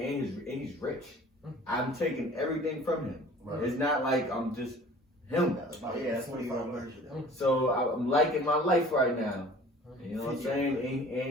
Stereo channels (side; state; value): both; normal; correlation 0.47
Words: and he's rich. I'm taking everything from him. Right. It's not like I'm just him. Oh yeah, that's 25 version. So I'm liking my life right now. You know what I'm saying?